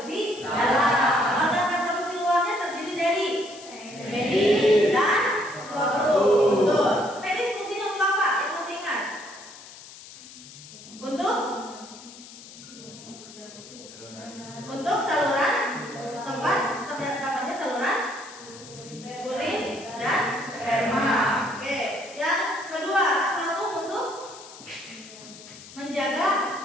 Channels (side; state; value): left; noise; hiss, 17 dB below the sound